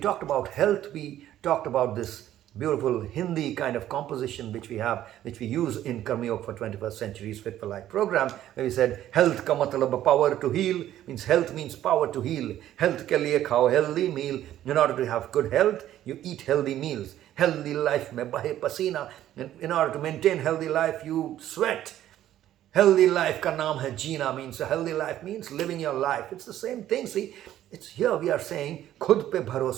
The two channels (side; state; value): left; quieter; 12.4 dB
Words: about health, we talked about this beautiful Hindi kind of composition which we use in Karma Yoga for 21st Century's Fit for Life program, where we said health ka matlab power to heal, means health means power to heal. Health ke liye khao healthy meal. In order to have good health, you eat healthy meals. Healthy life mein bahe pasina. In order to maintain healthy life, you sweat. Healthy life ka naam hai jeena, means a healthy life means living your life. It's the same thing. See, it's here we are saying khud pe